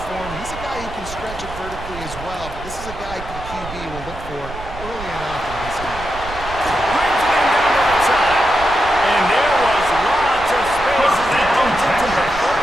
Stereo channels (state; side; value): noise; right; rumble, 12 dB below the sound